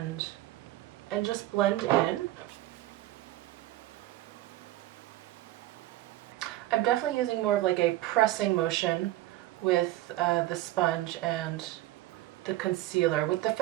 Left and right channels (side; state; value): left; quieter; 16.0 dB